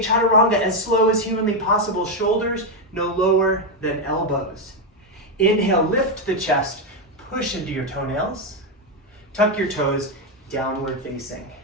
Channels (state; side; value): normal; both; correlation 0.05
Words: chaturanga as slow as humanly possible. Shoulders no lower than elbows. Inhale, lift the chest, push into your toenails. Tuck your toes, downward facing.